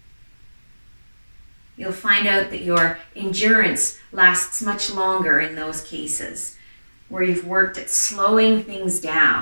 You'll find out that your endurance lasts much longer in those cases where you've worked at slowing things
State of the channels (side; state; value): both; inverted; correlation -1.00